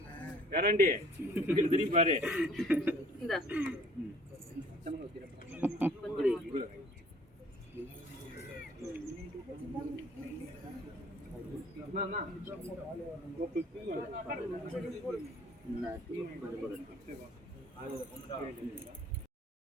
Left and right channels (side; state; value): both; normal; correlation 0.54